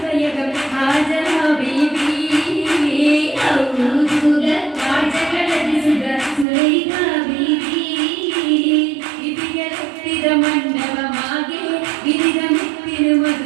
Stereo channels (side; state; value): left; drops out; at 6.5 s